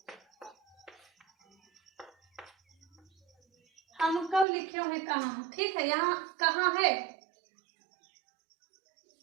हमको लिख्यो है कहाँ, ठीक है। यहाँ कहाँ है,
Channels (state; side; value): drops out; left; at 4.5 s